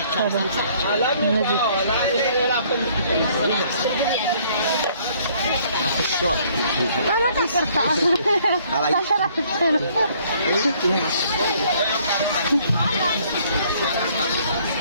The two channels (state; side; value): inverted; both; correlation -0.61